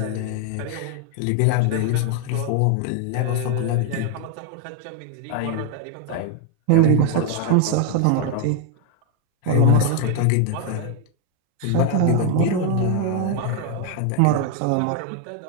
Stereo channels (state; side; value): different; both; correlation 0.01